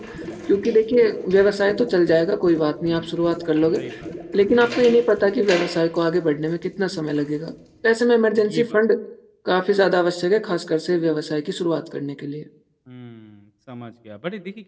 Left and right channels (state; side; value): identical; both; correlation 1.00